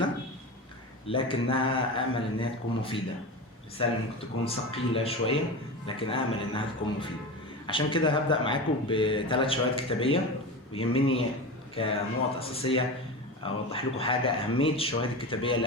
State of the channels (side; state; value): both; normal; correlation 0.25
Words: لكنها أمل إنها تكون مفيدة. رسالة ممكن تكون ثقيلة شوية لكن أمل إنها تكون مفيدة. عشان كده هبدأ معاكم ب3 شواهد كتابية، ويهمني كنقط أساسية أوضح لكم حاجة: أهمية الشواهد الكتابية